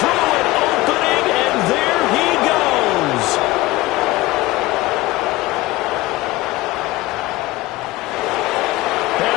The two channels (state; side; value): quieter; right; 19.0 dB